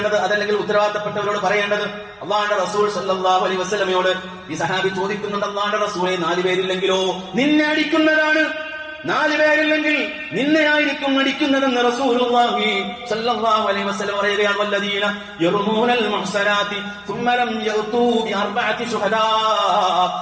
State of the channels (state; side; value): identical; both; correlation 1.00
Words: അതല്ലെങ്കിൽ ഉത്തരവാദിത്തപ്പെട്ടവരോട് പറയേണ്ടത്. അല്ലാഹുവിന്റെ റസൂൽ സല്ലല്ലാഹു അലൈഹി വസല്ലമയോട് ഈ സഹാബി ചോദിക്കുന്നുണ്ട്, അല്ലാഹുവിന്റെ റസൂലേ, 4 പേരില്ലെങ്കിലോ? നിന്നെ അടിക്കുന്നതാണ്. 4 പേരില്ലെങ്കിൽ നിന്നെയായിരിക്കും അടിക്കുന്നതെന്ന് റസൂലുള്ളാഹി സ്വല്ലല്ലാഹു അലൈഹി വസല്ലം പറയുകയാണ്. വല്ലദീന യർമൂനൽ മുഹ്സനാതി ثم لم يأتوا بأربعة شهداء